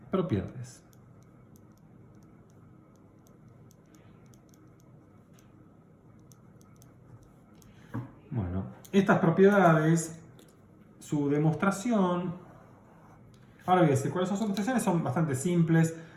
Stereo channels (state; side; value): identical; both; correlation 1.00